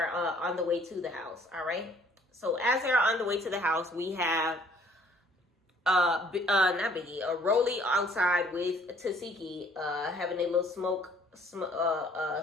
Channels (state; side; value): normal; both; correlation 0.59